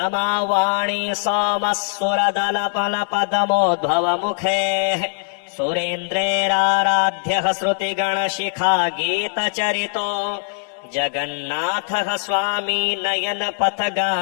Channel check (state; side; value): silent; right; digital silence